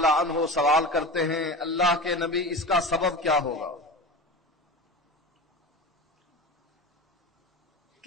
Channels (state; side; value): normal; both; correlation 0.30